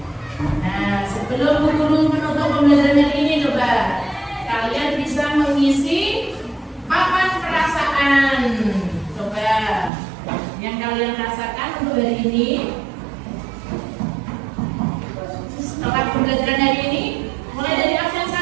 Nah, sebelum guru menutup pembelajaran ini, coba kalian bisa mengisi papan perasaan. Coba yang kalian rasakan untuk hari ini setelah pembelajaran hari ini, mulai dari absen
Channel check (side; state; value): left; drops out; at 9.9 s